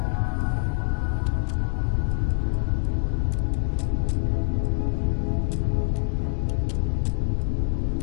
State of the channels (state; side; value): silent; right; digital silence